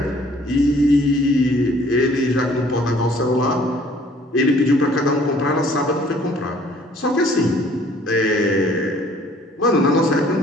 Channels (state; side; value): normal; both; correlation 0.57